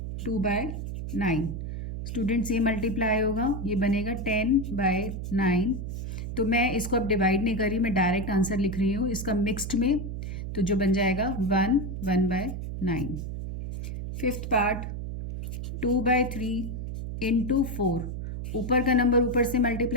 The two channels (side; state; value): right; noise; hum, 6 dB below the sound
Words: 2/9। स्टूडेंट्स ये मल्टीप्लाई होगा, ये बनेगा 10/9। तो मैं इसको अब डिवाइड नहीं कर रही, मैं डायरेक्ट आंसर लिख रही हूँ इसका मिक्स्ड में, तो जो बन जाएगा 1/9। Fifth part 2/3 × 4। ऊपर का नंबर ऊपर से